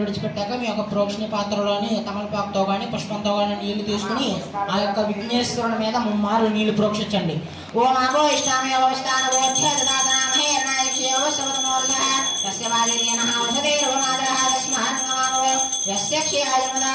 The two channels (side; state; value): both; identical; correlation 1.00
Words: విడిచిపెట్టాక మీ యొక్క ప్రోక్షణ పాత్రలోని తమలపాకుతో కానీ పుష్పంతో కానీ నీళ్లు తీసుకుని ఆ యొక్క విఘ్నేశ్వరుని మీద ముమ్మారు నీళ్లు ప్రోక్షించండి. ఓం అభో ఇష్టామి అవస్థాన